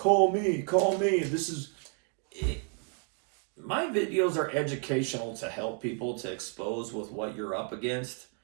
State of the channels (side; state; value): left; quieter; 38.1 dB